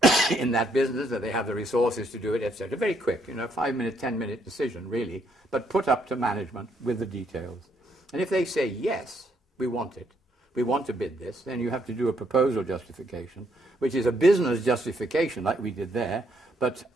in that business, that they have the resources to do it, etc. Very quick, 5-minute, 10-minute decision, really, but put up to management with the details. And if they say, yes, we want it, we want to bid this, then you have to do a proposal justification, which is a business justification like we did there, but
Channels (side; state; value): both; normal; correlation 0.72